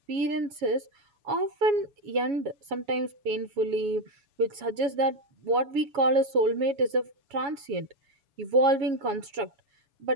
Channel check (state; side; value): late; left; 7.2 ms